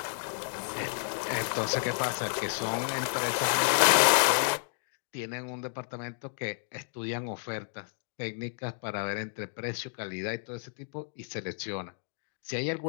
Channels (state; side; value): silent; right; digital silence